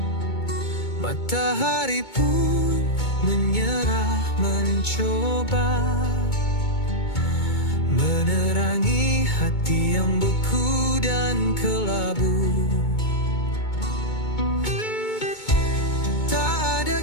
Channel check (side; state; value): right; late; 2.2 ms